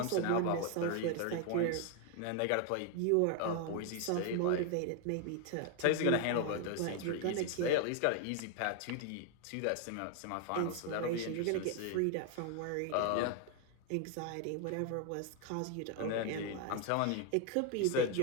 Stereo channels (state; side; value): different; both; correlation 0.00